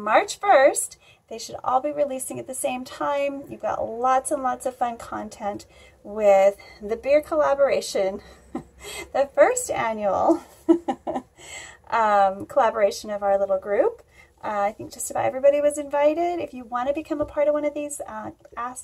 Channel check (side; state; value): both; identical; correlation 1.00